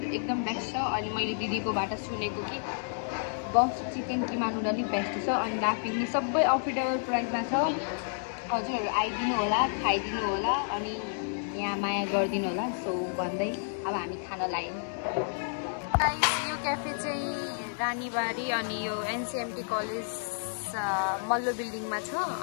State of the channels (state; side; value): silent; right; digital silence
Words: एकदम बेस्ट छ। अनि मैले दिदीकोबाट सुनेको कि बफ चिकन किमा नुडल नै बेस्ट छ। अनि लाफिङ सबै अफोर्डेबल प्राइसमा छ। हजुरहरू आइदिनु होला, खाइदिनु होला अनि यहाँ माया गरिदिनु होला। सो भन्दै अब हामी खान लाग्यौँ। यो क्याफे चाहिँ रानीबारी अनि यो एनसिएमटी कलेज मल्लो बिल्डिङमा छ।